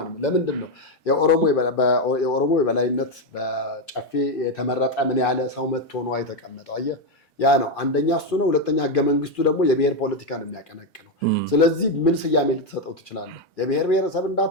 ለምንድን ነው የኦሮሞ የበላይነት በጨፌ የተመረጠ ምን ያለ ሰው መጥቶ ነው የተቀመጠው? አየህ፣ ያ ነው አንደኛ እሱ ነው። ሁለተኛ ህገ መንግስቱ ደግሞ የብሔር ፖለቲካ ነው የሚያቀነቅነው። ስለዚህ ምን ስያሜ ልትሰጠው ትችላለህ? የብሔር ብሔረሰብ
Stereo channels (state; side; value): normal; both; correlation 0.06